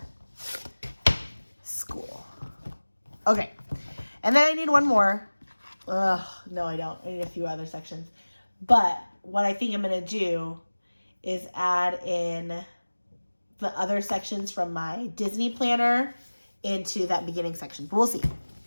school. Okay, and then I need one more. Ugh, no, I don't. I need a few other sections. But what I think I'm going to do is add in the other sections from my Disney planner into that beginning section. But we'll see.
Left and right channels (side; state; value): both; inverted; correlation -1.00